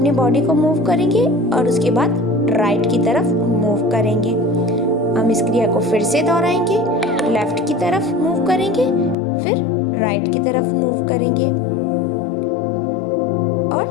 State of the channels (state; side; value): drops out; right; at 9.2 s